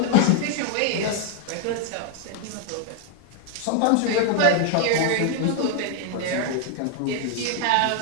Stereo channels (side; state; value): both; different; correlation 0.01